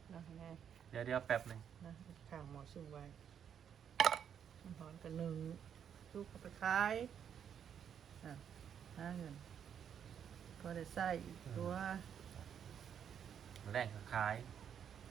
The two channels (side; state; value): left; quieter; 8.4 dB